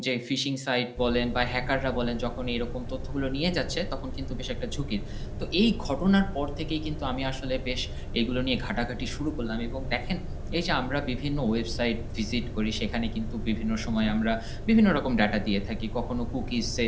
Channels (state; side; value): identical; both; correlation 1.00